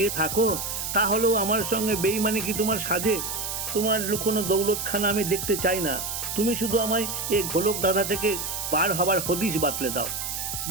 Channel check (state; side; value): noise; right; hiss, 4 dB below the sound